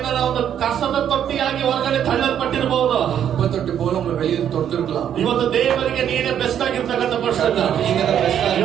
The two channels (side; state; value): left; quieter; 9.5 dB